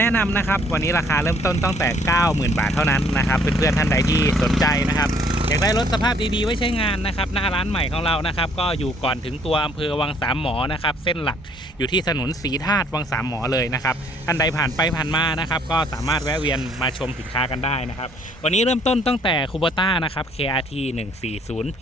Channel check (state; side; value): normal; both; correlation 0.62